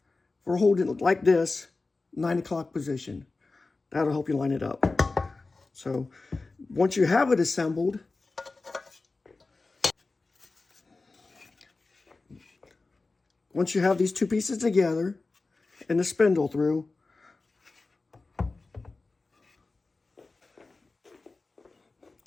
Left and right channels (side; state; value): right; quieter; 3.6 dB